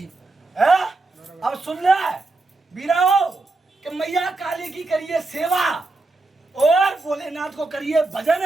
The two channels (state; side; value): quieter; left; 3.3 dB